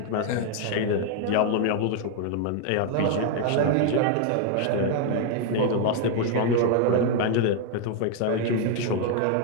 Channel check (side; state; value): both; different; correlation 0.00